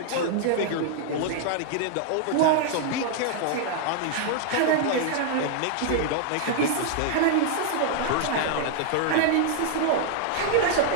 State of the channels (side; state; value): both; different; correlation 0.00